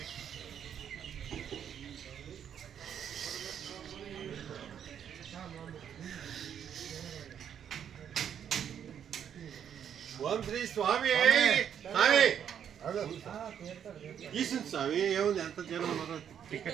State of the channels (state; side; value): quieter; left; 8.8 dB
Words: ఓం శ్రీ స్వామి స్వామి ఈశ్వర స్వామి ఏముంది ఎంత జనం